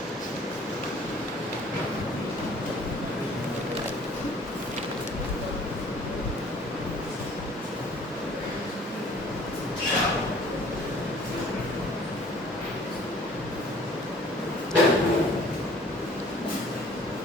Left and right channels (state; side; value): normal; both; correlation 0.53